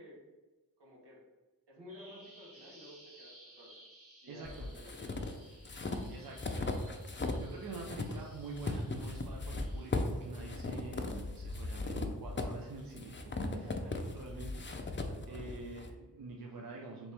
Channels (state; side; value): normal; both; correlation 0.58